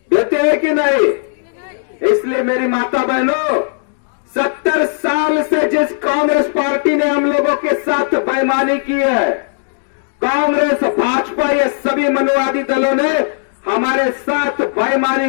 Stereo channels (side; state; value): right; silent; digital silence